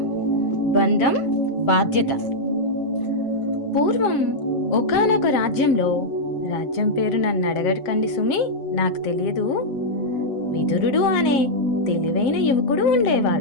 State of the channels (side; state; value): right; late; 7.5 ms